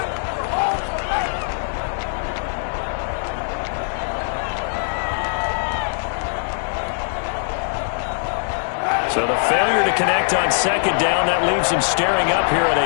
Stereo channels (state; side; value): silent; right; 65 dB below the other